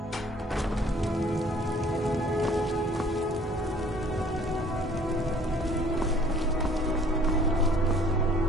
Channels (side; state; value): both; normal; correlation 0.56